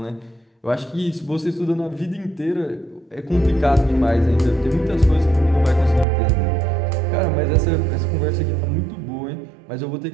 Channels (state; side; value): drops out; left; at 6.1 s